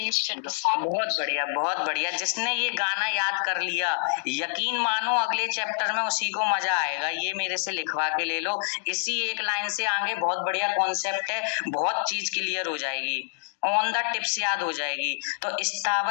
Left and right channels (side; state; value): right; silent; digital silence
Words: च। बहुत बढ़िया, बहुत बढ़िया। जिसने ये गाना याद कर लिया, यकीन मानो अगले चैप्टर में उसी को मजा आएगा। ये मेरे से लिखवा के ले लो, इसी एक लाइन से आगे बहुत बढ़िया कॉन्सेप्ट है, बहुत चीज क्लियर हो जाएगी, ऑन द टिप्स याद हो जाएगी। तो